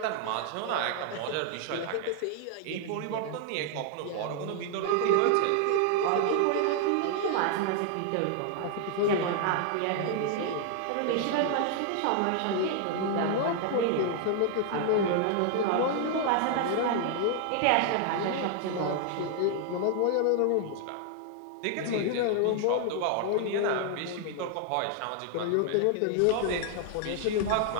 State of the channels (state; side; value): different; both; correlation 0.00